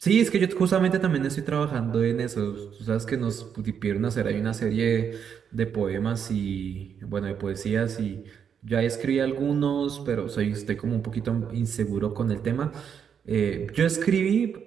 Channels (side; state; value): left; quieter; 7.6 dB